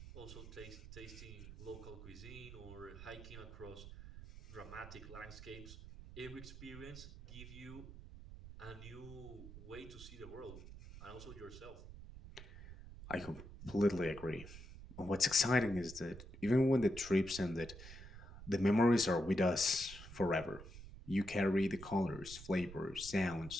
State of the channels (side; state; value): right; noise; rumble, 14 dB below the sound